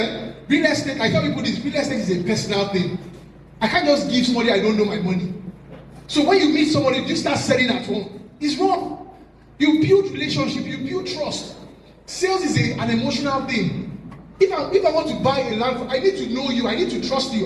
real estate, I tell people this, real estate is a personal thing. I can't just give somebody I don't know my money. So when you meet somebody, you start selling at home. It's wrong. You build relationship, you build trust. Sales is an emotional thing. If I want to buy a land, I need to know you, I need to trust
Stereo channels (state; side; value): identical; both; correlation 1.00